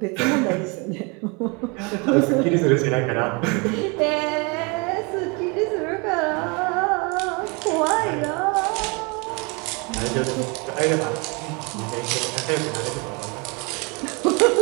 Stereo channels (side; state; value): left; quieter; 30.2 dB